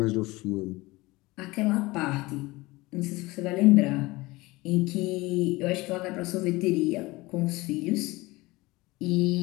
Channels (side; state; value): right; quieter; 21.3 dB